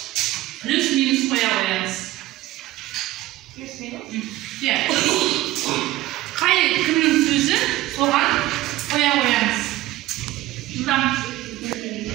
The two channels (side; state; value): left; quieter; 17.0 dB